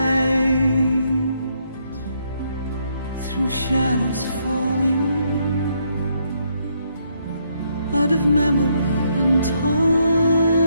through shadows falling out of memory and time.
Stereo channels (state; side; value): inverted; both; correlation -0.74